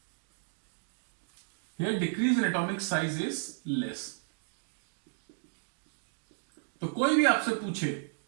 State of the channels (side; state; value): left; silent; digital silence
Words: Here decrease in atomic size is less. तो कोई भी आपसे पूछे